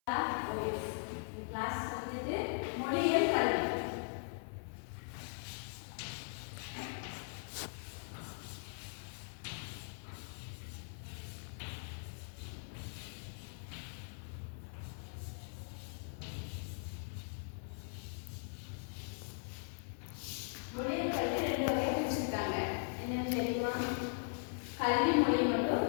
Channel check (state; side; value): silent; right; 51 dB below the other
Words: Class வந்துட்டு மொழியியல் கல்வி. மொழியியல் கல்வி ரெண்டு வகையா பிரிச்சிருக்காங்க. என்னன்னு தெரியுமா? கல்வி மொழி